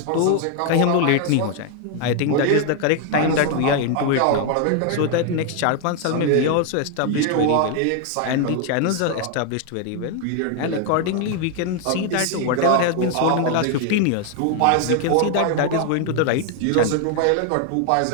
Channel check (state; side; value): different; both; correlation 0.00